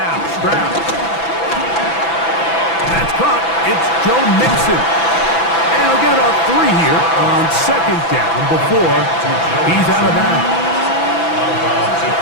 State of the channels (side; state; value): right; late; 6.0 ms